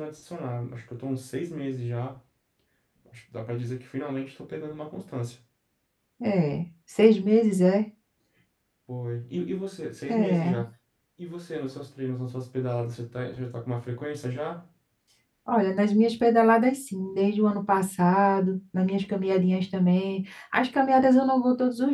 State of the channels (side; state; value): both; identical; correlation 1.00